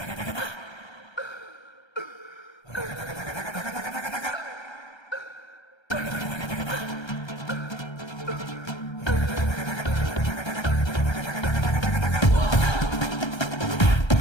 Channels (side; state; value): right; late; 1.3 ms